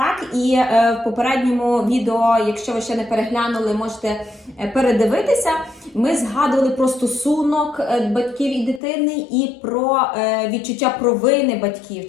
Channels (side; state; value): right; drops out; at 8.8 s